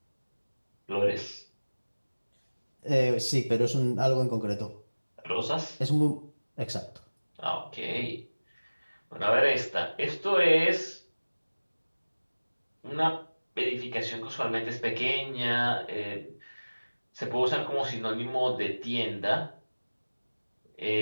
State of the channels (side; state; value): both; inverted; correlation -1.00